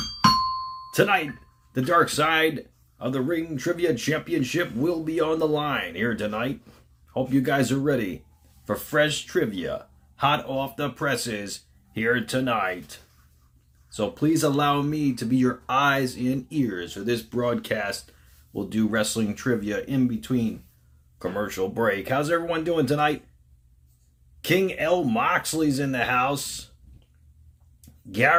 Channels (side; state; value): both; identical; correlation 1.00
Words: Tonight, the Dark Side of the Ring Trivia Championship will be on the line here tonight. Hope you guys are ready for fresh trivia, hot off the presses here tonight. So please allow me to be your eyes and ears for this broadcast. We'll do wrestling trivia in between commercial break. How's everyone doing tonight? King L. Moxley's in the house.